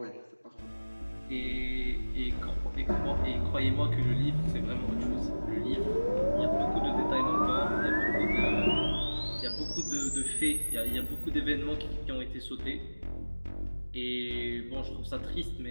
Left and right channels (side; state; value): both; inverted; correlation -1.00